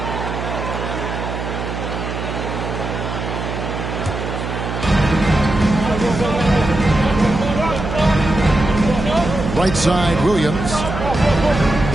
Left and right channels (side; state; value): right; noise; hum, 5 dB below the sound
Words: Right side, Williams.